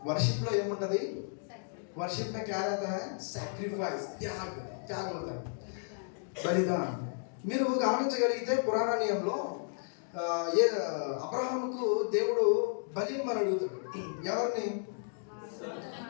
వర్షిప్ లో ఏముంటది వర్షిప్ में क्या रहता है सैक्रिफाइस त्याग होता है बलिदान మీరు గమనించగలిగితే పురాణ నియమంలో అబ్రహాముకు దేవుడు బలి ఇమ్మని అడుగుతాడు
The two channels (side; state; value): right; silent; digital silence